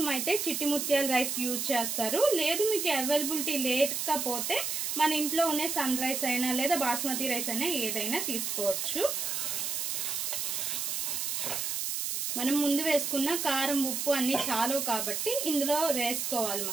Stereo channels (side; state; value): right; noise; hiss, 1 dB below the sound